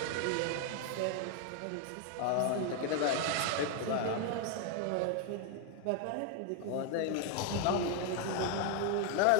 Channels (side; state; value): both; different; correlation 0.01